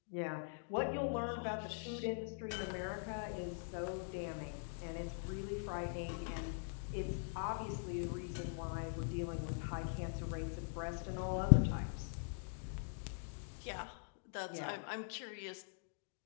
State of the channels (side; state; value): right; silent; digital silence